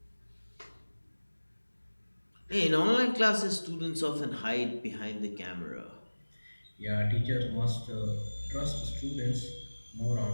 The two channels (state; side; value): inverted; both; correlation -1.00